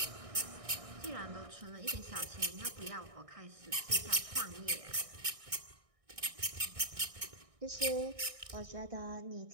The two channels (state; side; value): late; left; 1.6 ms